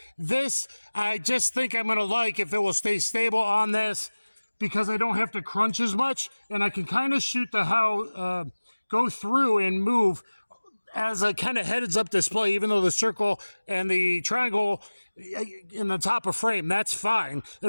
This, I just think I'm going to like if it will stay stable on this because I don't have to crunch as much, and I can kind of shoot the go through and move as a kind of heads-up display, even though the circle and the triangle in the top of frame, that's fine.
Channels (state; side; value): inverted; both; correlation -1.00